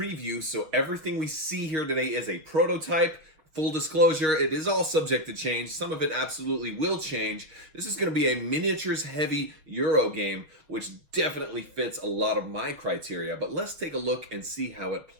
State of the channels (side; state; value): left; late; 6.5 ms